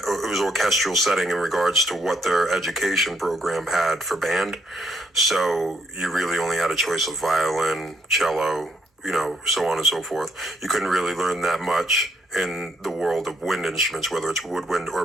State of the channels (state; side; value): normal; both; correlation 0.71